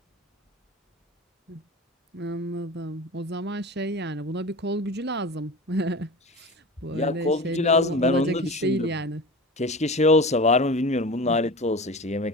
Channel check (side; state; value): both; normal; correlation 0.32